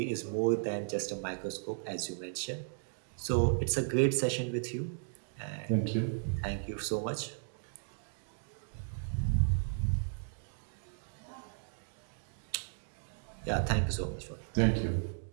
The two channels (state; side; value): silent; left; digital silence